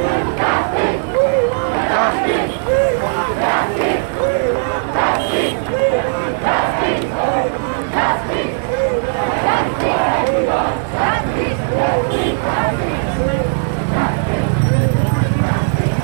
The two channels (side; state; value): left; silent; digital silence